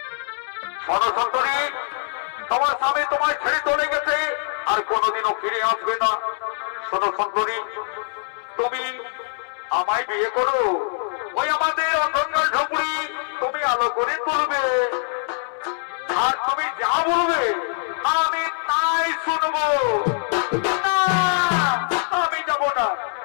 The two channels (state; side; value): silent; right; 63 dB below the other